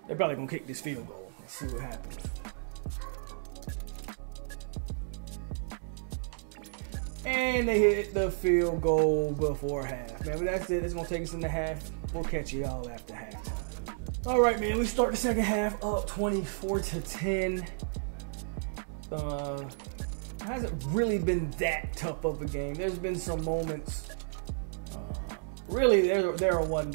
They're probably gonna kick this field goal. Let's see what happens. And they hit the field goal before half. Man, but that's it. It's gonna take us in the half. We'll catch you all after half. All right, man. We start the second half up 24-10. Hasn't really been that tough of a game. There's been some moments. Really, they're a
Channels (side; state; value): left; silent; digital silence